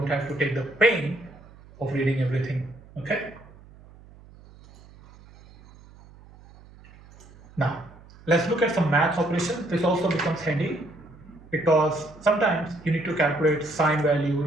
have to take the pain of reading everything. Okay. Now, let's look at some math operations. This also becomes handy because sometimes you need to calculate sine value,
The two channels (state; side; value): noise; right; hum, 23 dB below the sound